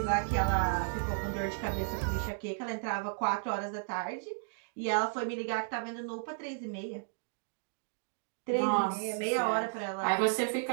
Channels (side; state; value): left; silent; digital silence